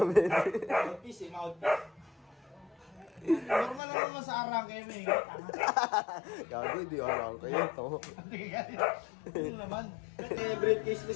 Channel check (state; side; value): drops out; right; at 3.8 s